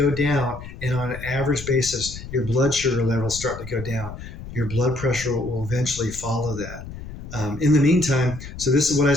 down, and on an average basis, your blood sugar levels start to go down, your blood pressure will eventually follow that. In the meantime, so this is what I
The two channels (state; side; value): noise; left; rumble, 12 dB below the sound